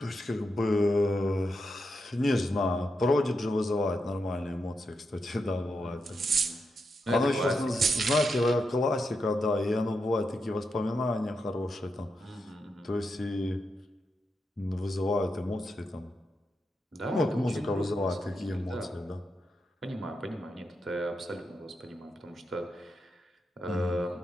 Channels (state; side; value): normal; both; correlation 0.85